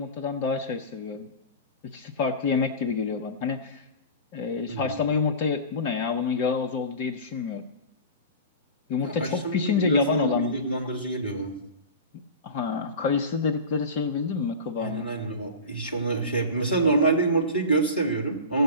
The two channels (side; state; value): both; inverted; correlation -0.31